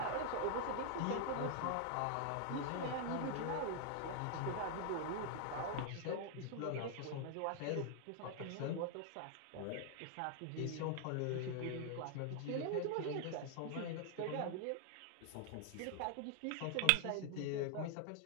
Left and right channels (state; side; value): different; both; correlation 0.00